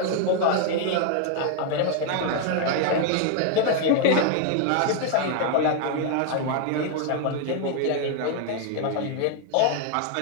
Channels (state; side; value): different; both; correlation 0.00